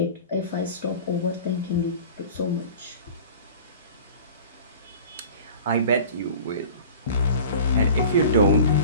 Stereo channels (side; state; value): both; inverted; correlation -0.41